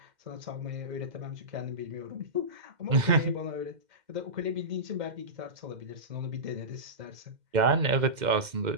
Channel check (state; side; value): late; left; 2.1 ms